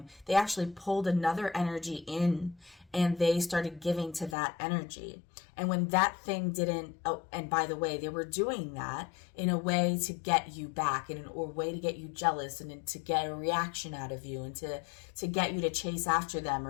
they actually pulled another energy in and they started giving to that energy. And when that thing didn't, oh, and by the way, they were doing that in a way to get you back, in a way to get you jealous and to get a reaction out of you and to get you to chase after them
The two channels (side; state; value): right; drops out; at 4.4 s